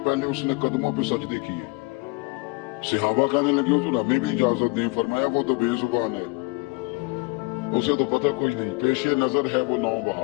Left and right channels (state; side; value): quieter; right; 27.6 dB